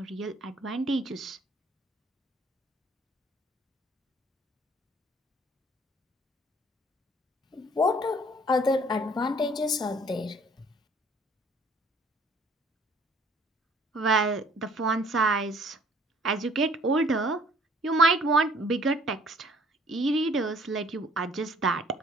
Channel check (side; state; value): both; normal; correlation 0.58